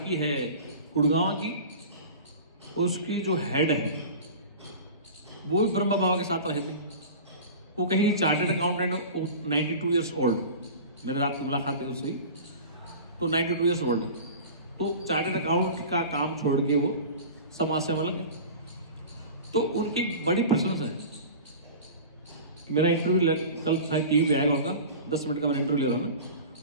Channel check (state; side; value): inverted; both; correlation -0.36